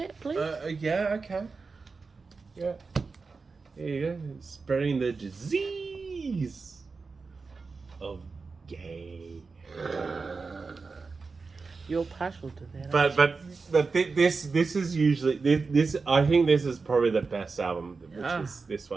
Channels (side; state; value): left; quieter; 4.4 dB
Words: please? Yeah, okay. Yeah. There you go. Spreading the disease of gay. You're partial to that. But this is usually this. I think this is probably the best album, which is this